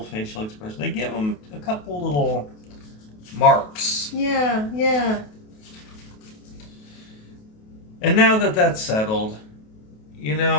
facial expression. They give him a couple little marks. Yeah, yeah. And now that that's settled,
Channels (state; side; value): late; right; 28 ms